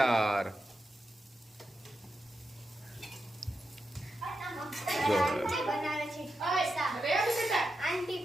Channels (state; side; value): normal; both; correlation 0.88